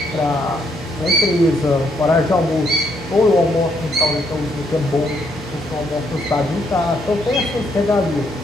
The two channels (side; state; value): both; normal; correlation 0.73